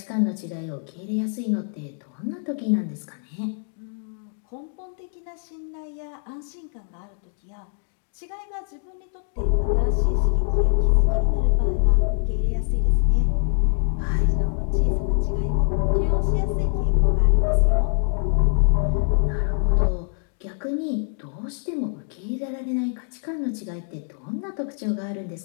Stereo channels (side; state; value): right; silent; 63 dB below the other